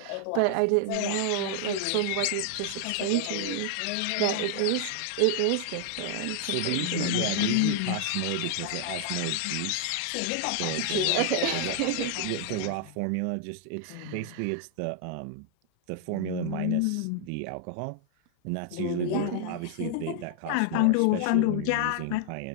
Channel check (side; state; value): both; different; correlation 0.00